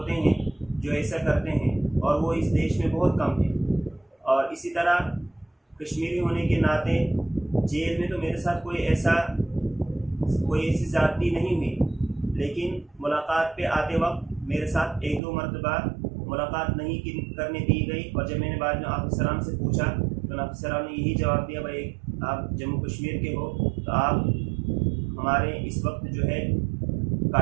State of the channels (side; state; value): left; drops out; at 15.2 s